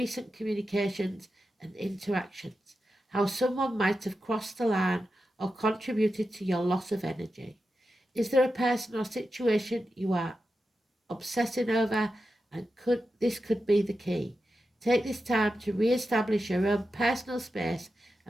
communications and interactions, how someone might have crossed the line or contributed to your loss of energy. Is there a person or situation you are obsessing over? And this could be the key. Take this time to re-establish your own personal space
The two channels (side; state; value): both; normal; correlation 0.90